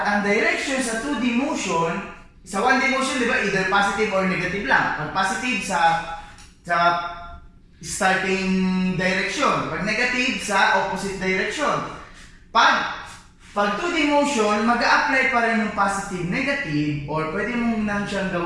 ang direction sa 2D motion, sa 1D motion, di ba, either positive or negative lang. Pag positive sa starting direction. Pag negative sa opposite direction. Pag 2D motion, mag-a-apply pa rin yung positive, negative, or pwede mo nang siyang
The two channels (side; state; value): both; identical; correlation 1.00